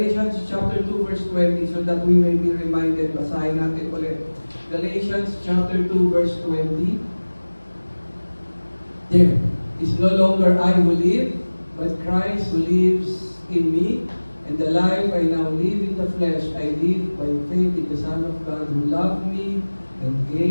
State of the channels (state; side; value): inverted; both; correlation -1.00